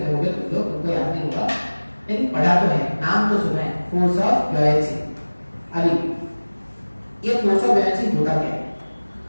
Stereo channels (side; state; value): both; inverted; correlation -1.00